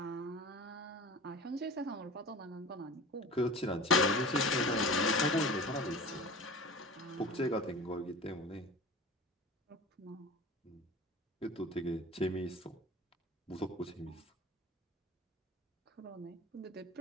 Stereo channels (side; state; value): both; normal; correlation 0.37